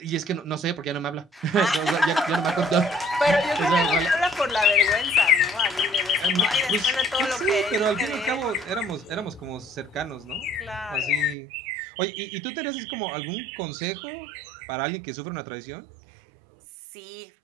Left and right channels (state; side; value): drops out; left; at 11.4 s